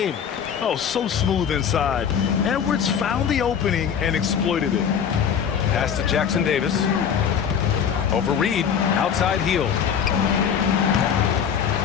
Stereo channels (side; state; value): right; quieter; 7.8 dB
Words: Oh, so smooth inside. Edwards found the opening and exploited it. Pass to Jackson Davis. Over Reed, outside Hield.